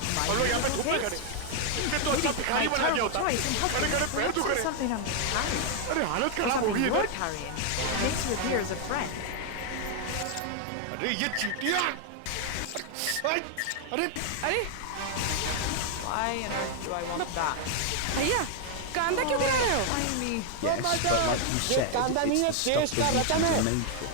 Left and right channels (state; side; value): different; both; correlation 0.00